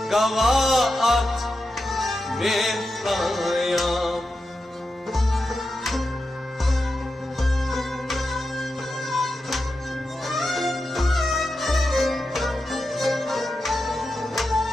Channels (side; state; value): both; normal; correlation 0.89